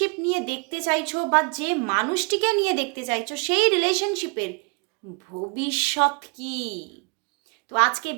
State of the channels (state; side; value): quieter; left; 33.2 dB